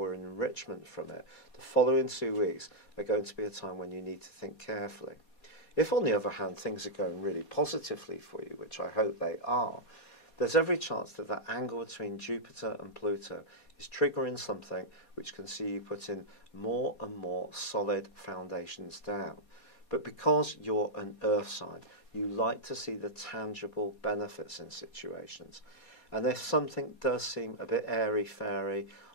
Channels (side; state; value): right; late; 4.2 ms